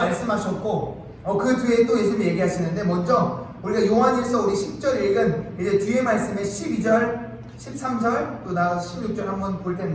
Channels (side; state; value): both; identical; correlation 1.00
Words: 그 뒤에 또 예수님이 얘기하시는데, 먼저 우리가 요한일서 우리 10절 읽은 이제 뒤에 말씀에 12절, 13절 또 나가서 16절 한번 볼